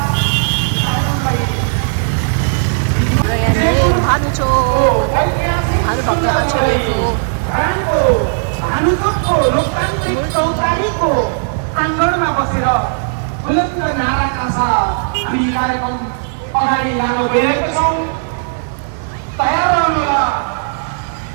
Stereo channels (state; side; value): silent; left; 58 dB below the other